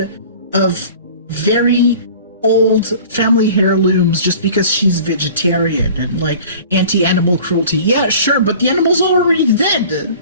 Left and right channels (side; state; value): both; inverted; correlation -0.44